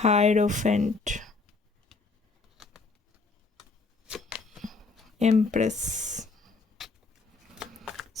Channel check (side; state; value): right; quieter; 3.9 dB